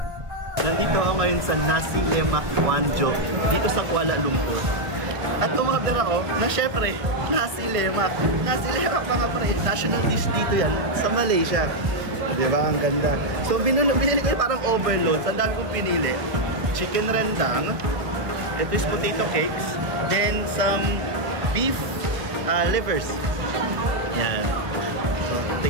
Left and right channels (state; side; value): late; left; 1.2 ms